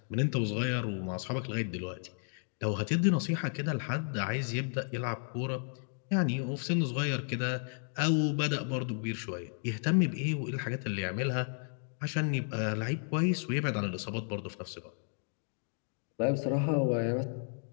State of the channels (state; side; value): silent; right; 56 dB below the other